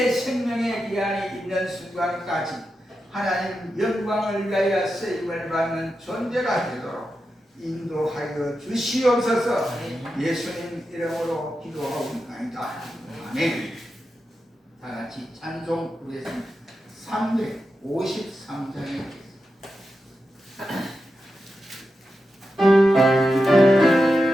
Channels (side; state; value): both; normal; correlation 0.89